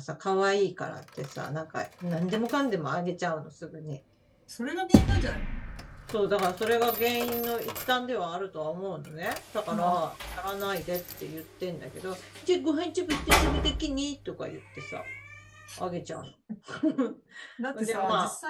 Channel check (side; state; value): both; identical; correlation 1.00